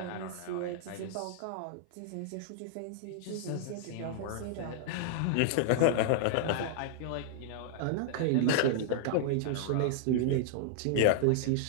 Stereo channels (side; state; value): both; different; correlation -0.01